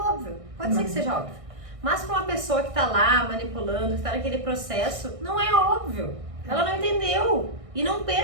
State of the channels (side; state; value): left; late; 1.6 ms